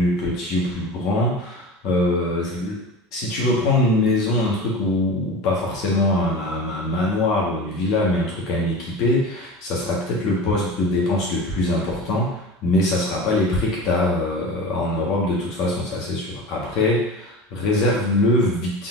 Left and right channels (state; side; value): normal; both; correlation 0.32